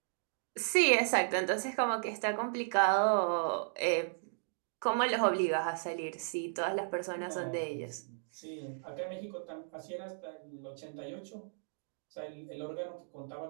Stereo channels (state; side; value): silent; left; digital silence